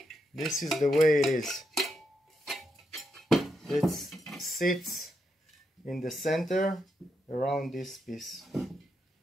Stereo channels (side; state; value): both; normal; correlation 0.82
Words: This is the way it is. It sits in the center around this piece.